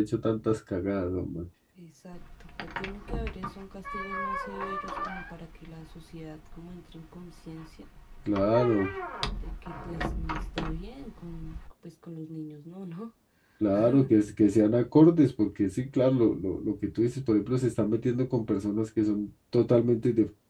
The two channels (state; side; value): identical; both; correlation 1.00